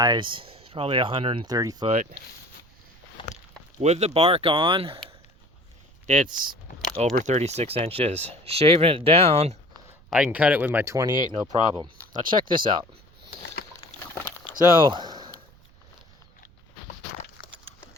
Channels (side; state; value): right; noise; rumble, 28 dB below the sound